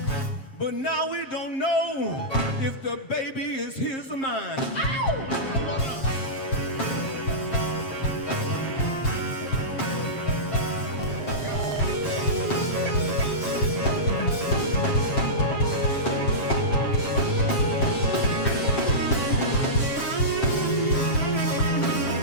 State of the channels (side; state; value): right; late; 7.5 ms